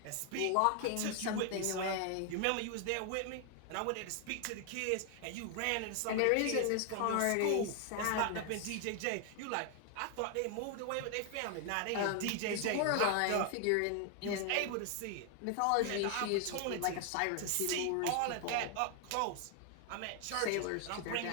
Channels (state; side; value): different; both; correlation 0.00